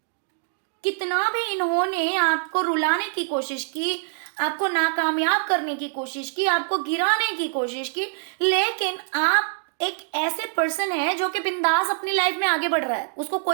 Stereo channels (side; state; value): left; silent; digital silence